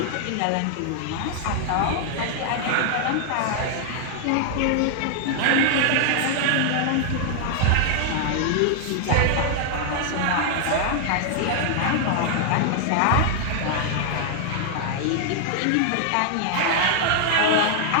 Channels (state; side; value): different; both; correlation 0.00